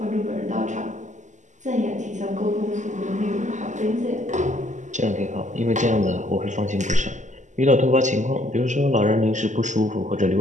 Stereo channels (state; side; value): late; left; 0.35 ms